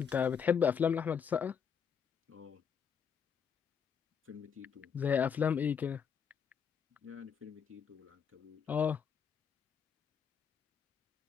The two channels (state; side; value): quieter; right; 7.1 dB